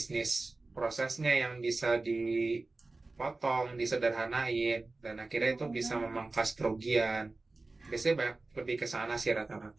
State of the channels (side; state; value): left; quieter; 3.3 dB